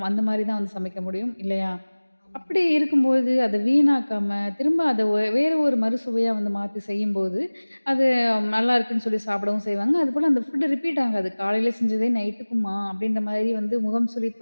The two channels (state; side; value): inverted; both; correlation -1.00